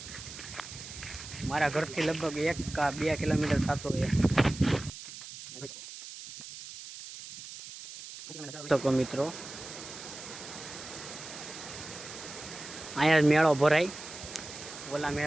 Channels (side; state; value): right; noise; hiss, 12 dB below the sound